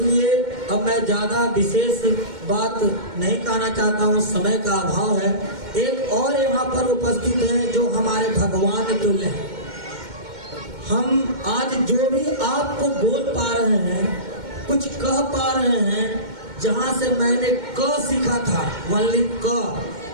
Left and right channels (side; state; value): left; late; 2.1 ms